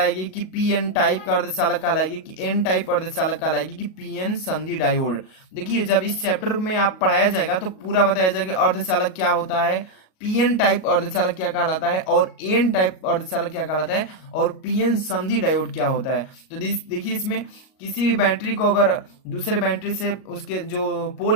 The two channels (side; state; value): right; late; 38 ms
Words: कि पीएन टाइप का अर्धचालक कहलाएगी कि एन टाइप अर्धचालक कहलाएगी कि पीएन संधि डायोड। देखिए जब इस चैप्टर में आप पढ़ाया जाएगा तो पूरा बताया जाएगा अर्धचालक क्या होता है, पीएन टाइप अर्धचालक क्या कहलाता है और एन टाइप अर्धचालक क्या कहलाता है और पीएन संधि डायोड क्या होता है। तो देखिए इसमें किसी भी बैटरी को अगर दूसरे बैटरी से उसके जो